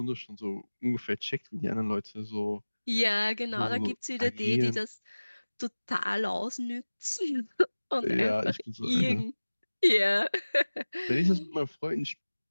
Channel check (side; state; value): both; inverted; correlation -1.00